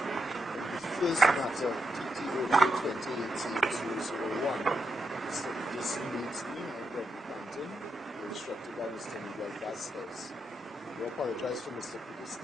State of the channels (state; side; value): normal; both; correlation 0.84